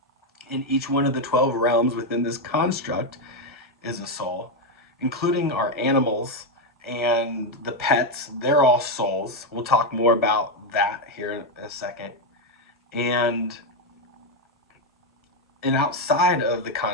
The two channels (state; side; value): normal; both; correlation 0.04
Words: in each one of the 12 realms within this construct is a soul, including our animals and the pets. They're all souls. We'll talk more about that here in a second. And outside of the